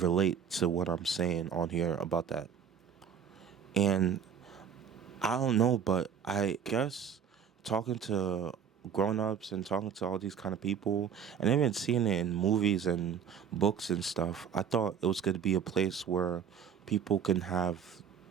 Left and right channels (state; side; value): quieter; left; 7.6 dB